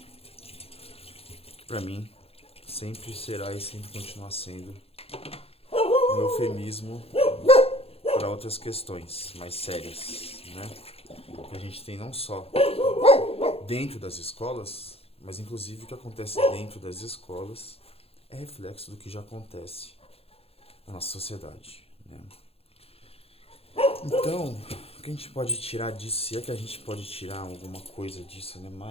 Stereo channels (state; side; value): late; right; 0.29 ms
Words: que pra mim sempre será e sempre continuará sendo um eufemismo para outras questões mais sérias, né? Que a gente tem não só dentro das escolas, mas inclusive o que acontece dentro das escolas é reflexo do que já acontece na nossa sociedade, né? Então, o que a gente pode tirar disso, se é que a gente pode tirar alguma coisa disso, né?